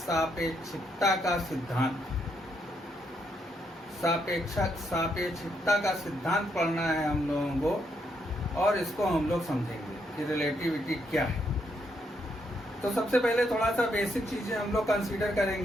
का सिद्धांत। सापेक्षिकता का सिद्धांत पढ़ना है हम लोगों को और इसको हम लोग समझेंगे कि रिलेटिविटी क्या है। तो सबसे पहले थोड़ा सा बेसिक चीज़ें हम लोग कंसीडर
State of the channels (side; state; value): both; normal; correlation 0.76